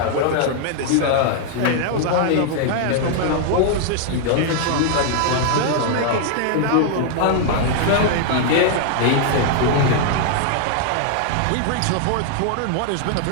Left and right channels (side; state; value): both; different; correlation 0.00